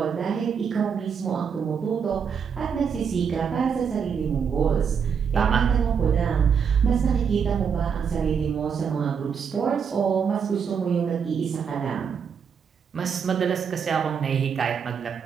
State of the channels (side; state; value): left; quieter; 6.8 dB